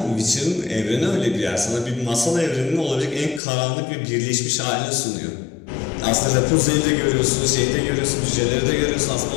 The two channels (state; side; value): drops out; right; at 3.4 s